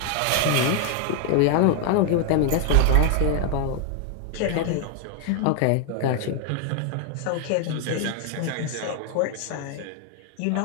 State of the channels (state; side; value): different; both; correlation 0.01